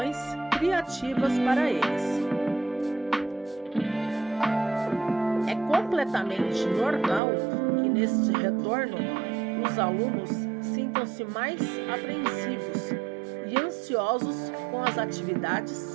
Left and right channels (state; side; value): drops out; left; at 7.2 s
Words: criativas para eles. É completamente normal que neste retorno os alunos sintam-se mais apreensivos e ansiosos com as